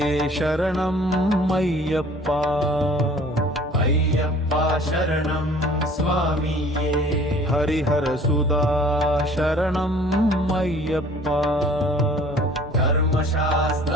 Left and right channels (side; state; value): both; normal; correlation 0.51